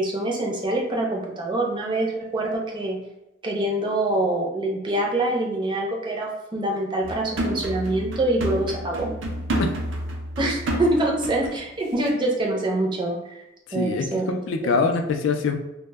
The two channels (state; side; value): normal; both; correlation 0.43